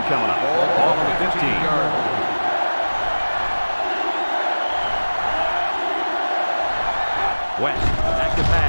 coming up. Ball on the 15. West, back to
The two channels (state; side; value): inverted; both; correlation -1.00